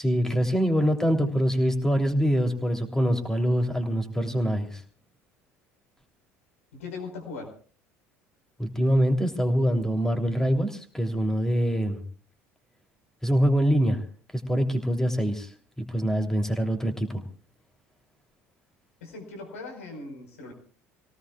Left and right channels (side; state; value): both; normal; correlation 0.91